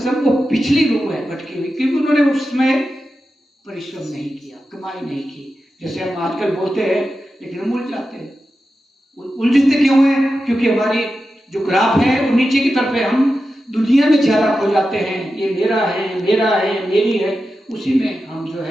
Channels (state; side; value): normal; both; correlation 0.91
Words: वो पिछली रूह है भटकी हुई, क्योंकि उन्होंने उसमें परिश्रम नहीं किया, कमाई नहीं की। जैसे हम आजकल बोलते हैं, लेकिन हम उलझ जाते हैं। उलझते क्यों हैं? क्योंकि हमारी जो ग्राफ है वो नीचे की तरफ है, हम दुनिया में ज्यादा खो जाते हैं, ये मेरा है, मेरा है, मेरी है, उसी में हम जो